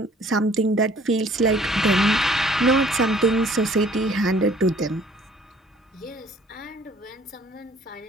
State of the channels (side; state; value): both; normal; correlation 0.57